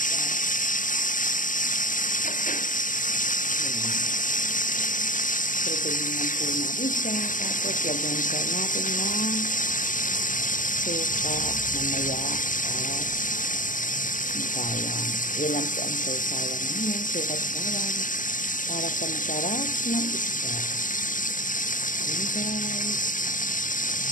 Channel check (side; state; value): right; late; 0.38 ms